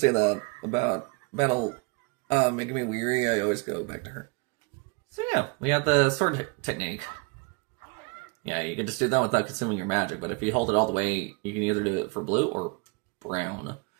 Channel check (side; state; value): left; quieter; 29.5 dB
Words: that about battle making me weary. I always go back to her. So yeah, we have the sword technique. Yeah, you can just do that without consuming your magic, but if you hold it all the way, you can either do it for blue or brown.